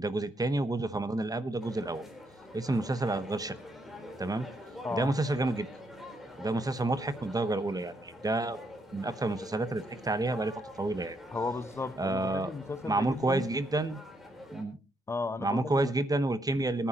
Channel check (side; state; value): both; normal; correlation 0.76